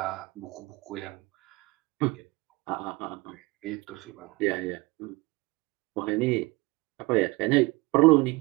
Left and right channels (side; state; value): left; quieter; 23.8 dB